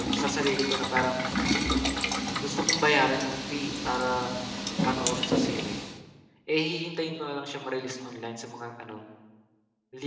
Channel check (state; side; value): identical; both; correlation 1.00